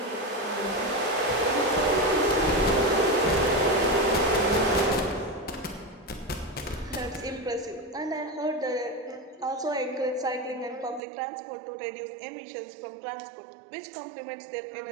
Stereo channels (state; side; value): drops out; left; at 11.0 s